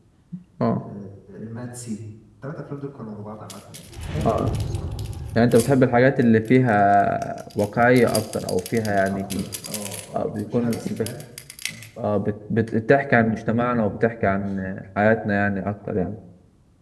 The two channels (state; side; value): identical; both; correlation 1.00